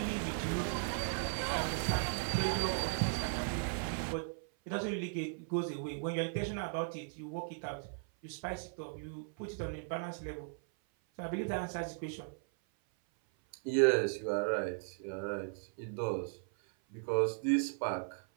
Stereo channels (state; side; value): silent; left; 53 dB below the other